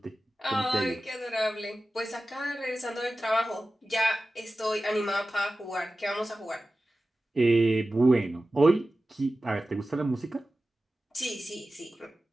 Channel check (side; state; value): both; normal; correlation 0.95